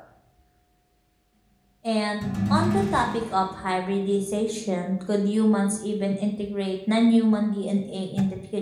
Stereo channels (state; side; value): identical; both; correlation 1.00